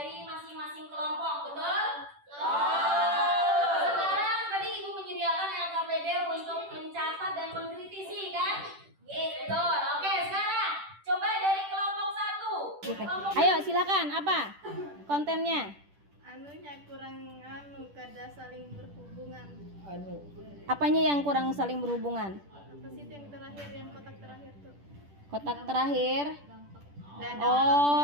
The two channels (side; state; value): left; late; 10 ms